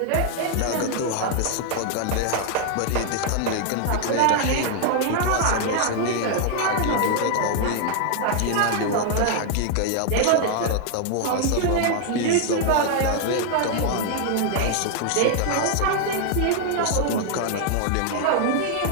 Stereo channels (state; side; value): different; both; correlation 0.00